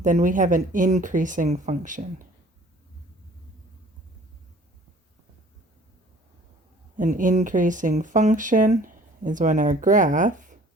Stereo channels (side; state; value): both; normal; correlation 0.52